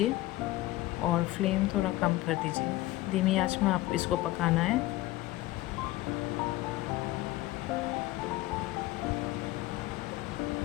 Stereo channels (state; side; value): quieter; right; 17.4 dB